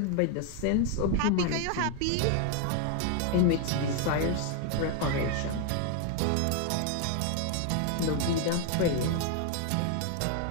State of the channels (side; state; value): both; different; correlation 0.01